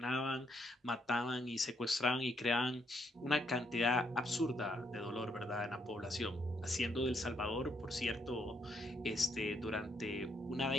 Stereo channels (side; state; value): both; normal; correlation 0.74